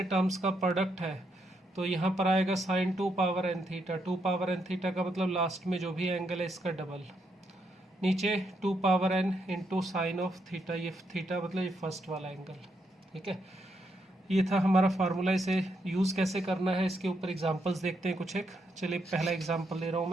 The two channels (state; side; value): normal; both; correlation 0.78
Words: टर्म्स का प्रोडक्ट है तो यहाँ पर आएगा sine 2 power n theta, 2 power n theta का मतलब लास्ट में जो भी एंगल है इसका डबल, नीचे 2 power n into sine of theta, ये थीटा मतलब ये फर्स्ट वाला एंगल। ठीक है, ये था हमारा फार्मूला। इसे यूज़ कैसे करना है इसके ऊपर एग्जांपल्स देखते हैं कुछ एक। चलिए पहला एग्जांपल ले रहा हूँ